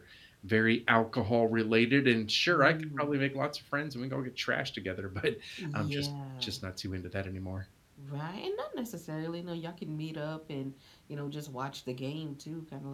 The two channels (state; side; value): identical; both; correlation 1.00